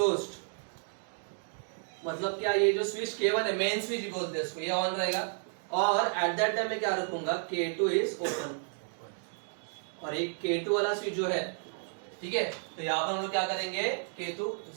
मतलब क्या, ये जो स्विच K1 है, मेन स्विच बोलते हैं इसको, ये ऑन रहेगा। और एट दैट टाइम में क्या रखूंगा, K2 इज ओपन, और एक K2 वाला स्विच जो है, ठीक है। तो यहाँ पर हम लोग क्या करेंगे, K2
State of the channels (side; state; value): left; silent; 56 dB below the other